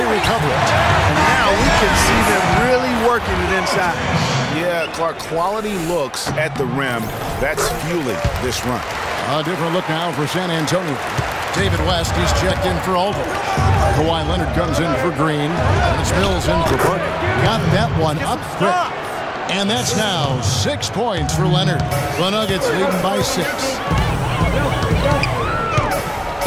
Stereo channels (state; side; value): identical; both; correlation 1.00